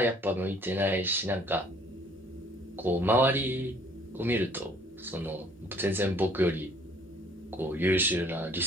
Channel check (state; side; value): normal; both; correlation 0.58